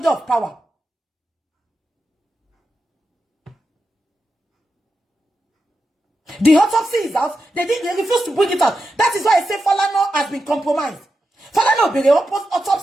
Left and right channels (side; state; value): both; normal; correlation 0.88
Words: of power. The autopsy is out. They refuse to bring it out. That is why I say Falana has been compromised. Falana be the